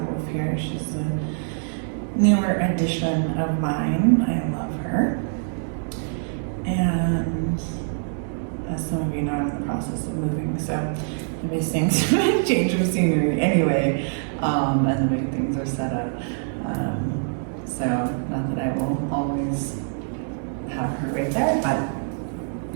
Wolf here. She's a newer addition of mine. I love her. And as some of you know, I'm in the process of moving, so I'll be seeing some change of scenery anyway, and the way things are set up. So not that I will always have her right there,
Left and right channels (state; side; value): silent; left; digital silence